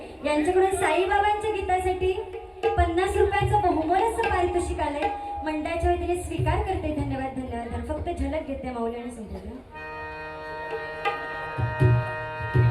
यांच्याकडून साईबाबांच्या गीतासाठी 50 रुपयाचं बहुमोलाचं पारितोषिक आलंय मंडळाच्या वतीने स्वीकार करते धन्यवाद धन्यवाद फक्त झलक घेते माऊली आणि संपूर्ण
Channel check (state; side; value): identical; both; correlation 1.00